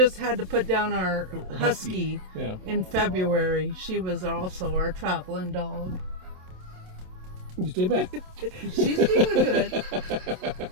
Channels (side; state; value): left; late; 27 ms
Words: had to put down our husky Yeah. in February. She was also our traveling dog. You stay back. She's doing good.